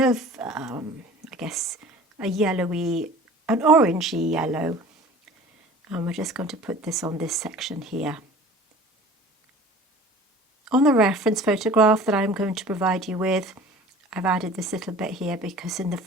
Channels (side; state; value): both; normal; correlation 0.44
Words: I guess, a yellowy, an orangey yellow. And we're just going to put this on this section here. On the reference photograph that I'm going to provide you with, I've added this little bit here because in the